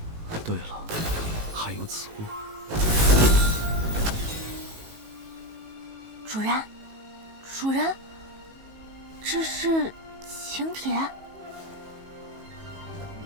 对了，还有此物。主人，主人，这是请帖。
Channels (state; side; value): late; left; 18 ms